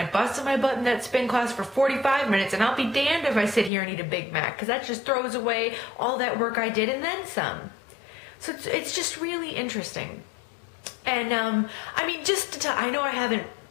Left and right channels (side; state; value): right; drops out; at 3.7 s